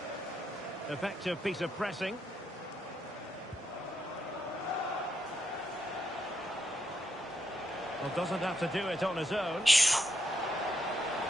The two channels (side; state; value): both; normal; correlation 0.80